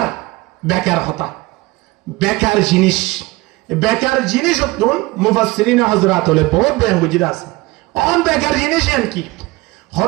বেকার হতা বেকার জিনিস অতন মুফাসসিরিন হযরত হলে বহুত বয়ান বুঝিরা আছে অন বেকার জিনিস এন কি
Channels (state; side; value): quieter; left; 21.5 dB